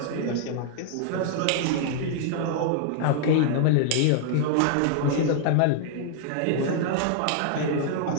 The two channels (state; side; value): different; both; correlation 0.00